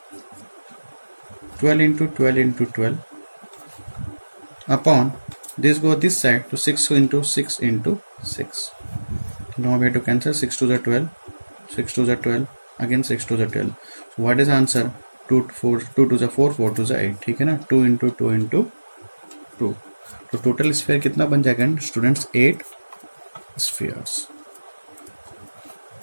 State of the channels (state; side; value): inverted; both; correlation -1.00